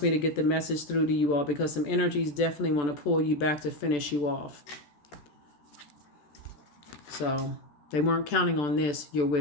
me to get the message through to you all, because some energies definitely want to pull you back to finish you off. So they weren't counting on this, your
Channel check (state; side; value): late; right; 14 ms